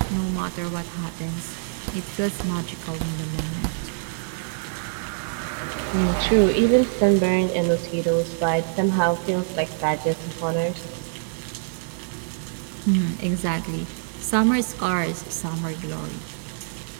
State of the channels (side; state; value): left; silent; 58 dB below the other